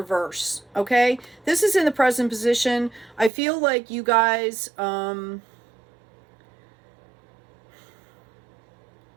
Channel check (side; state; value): left; drops out; at 3.3 s